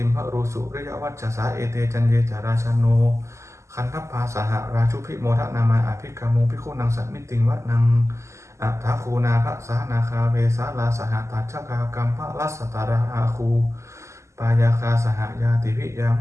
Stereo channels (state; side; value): late; left; 0.14 ms